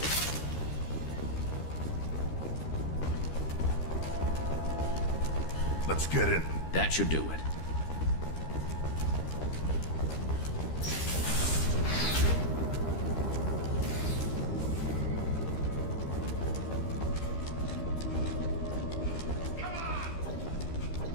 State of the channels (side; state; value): right; late; 13 ms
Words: Let's get in. That should do it.